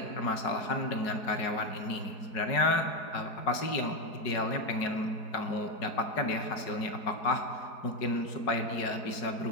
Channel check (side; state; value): right; late; 4.7 ms